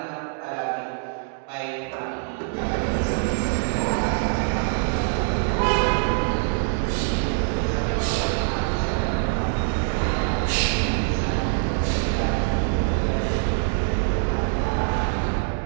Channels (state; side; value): silent; left; 63 dB below the other